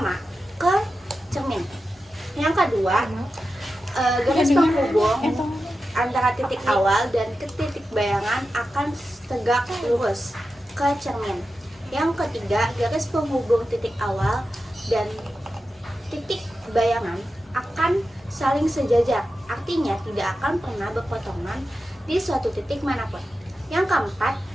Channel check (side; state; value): both; normal; correlation 0.91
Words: ke cermin. Yang kedua, garis penghubung antara titik awal dan ke titik bayangan akan tegak lurus ke cermin. Yang ketiga, garis penghubung titik awal dan titik bayangan akan saling sejajar, artinya tidak akan pernah berpotongan di suatu titik manapun. Yang keempat,